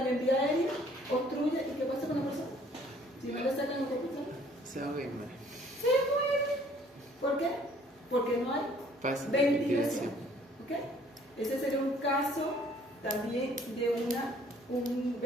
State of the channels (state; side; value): normal; both; correlation 0.58